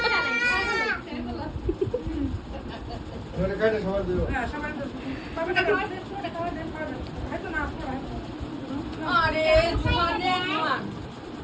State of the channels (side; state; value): both; identical; correlation 1.00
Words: ধরে কাটে সবাই দিও আরে